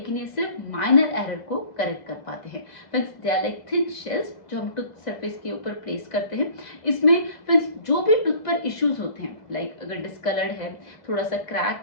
ये सिर्फ माइनर एरर को करेक्ट कर पाते हैं। Friends, they are like thin shells जो हम टूथ सरफेस के ऊपर प्लेस करते हैं। इसमें फ्रेंड्स जो भी टूथ पर इश्यूज होते हैं, लाइक अगर डिस्कलर्ड है, थोड़ा सा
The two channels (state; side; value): late; right; 2.0 ms